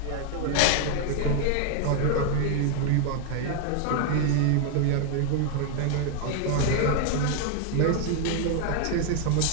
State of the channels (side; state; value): both; different; correlation 0.01